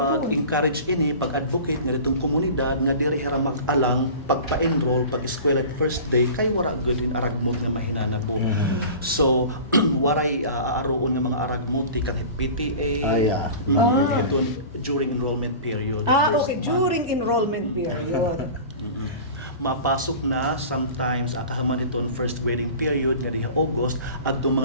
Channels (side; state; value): both; inverted; correlation -0.38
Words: ini, pag-advocate nga ditong komunidad nga diri hira mag-alang pagpa-enroll pag eskwela at first day kay wara good in aragmot nga mahinanabo. So waray aaroon nga mga aragmot kang PTA. Ito during enrollment period. First Okay, month. during enrollment period. Mapasok na sometimes akahaman iton first grading period nga diha August adto